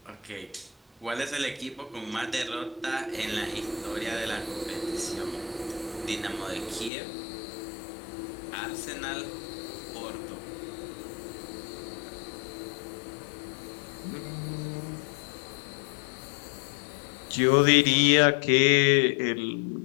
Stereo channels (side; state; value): right; drops out; at 6.9 s